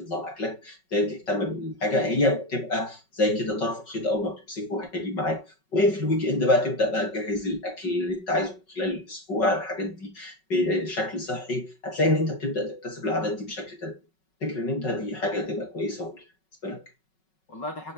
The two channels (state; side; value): late; right; 5.4 ms